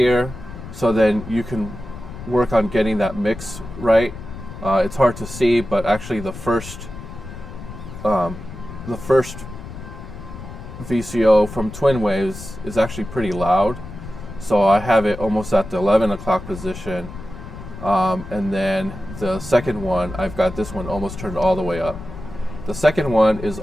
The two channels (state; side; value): noise; left; rumble, 12 dB below the sound